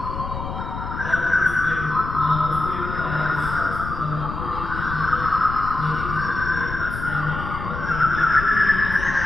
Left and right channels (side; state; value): left; noise; rumble, 7 dB below the sound